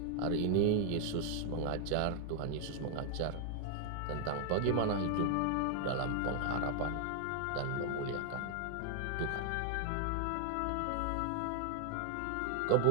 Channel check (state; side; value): different; both; correlation 0.00